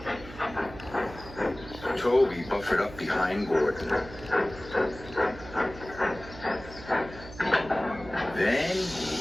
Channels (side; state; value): right; noise; hum, 15 dB below the sound